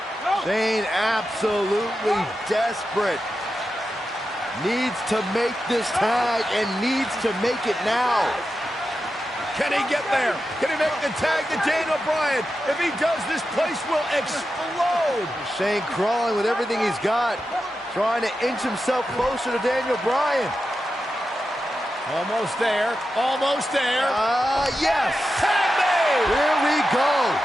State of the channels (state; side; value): normal; both; correlation 0.90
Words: Shane absolutely desperate. Needs to make this tag and needs to make it now. Can he get there? Can he make the tag to Daniel Bryan? If he does, this place will explode. Shane crawling with everything he's got, trying to inch himself closer to Daniel Bryan. Almost there. Almost there. Yes. Tag made. Here we go.